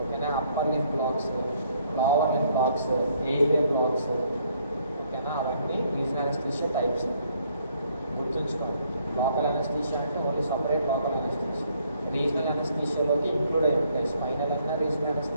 ఓకేనా? Upper lip blocks, lower lip blocks, airway blocks, ఓకేనా? అవన్నీ రీజనల్ అనస్థీషియా టైప్స్. గుర్తుంచుకోండి. లోకల్ అనస్థీషియా అంటే only separate local anaesthesia. Regional అనస్థీషియాలోకి ఇంక్లూడ్ అయి ఉంటాయి. స్పైనల్ అన్నా రీజనల్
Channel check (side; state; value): both; inverted; correlation -0.67